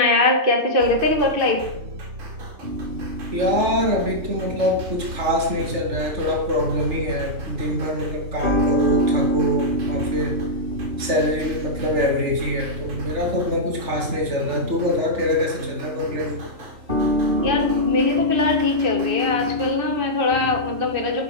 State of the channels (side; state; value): left; late; 3.3 ms